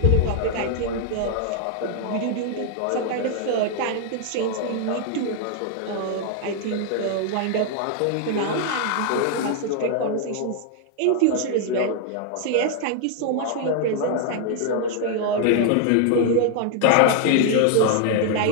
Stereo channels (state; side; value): different; both; correlation 0.00